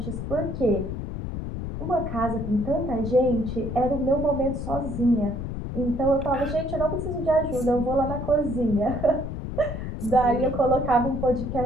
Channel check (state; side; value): noise; left; rumble, 6 dB below the sound